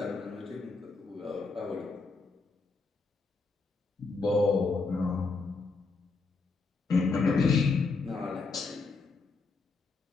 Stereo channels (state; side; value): quieter; right; 4.1 dB